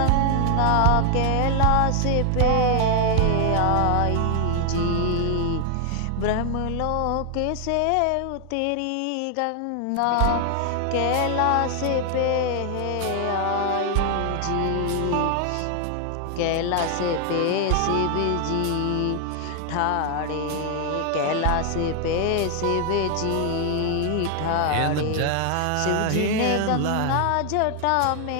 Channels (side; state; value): both; different; correlation 0.00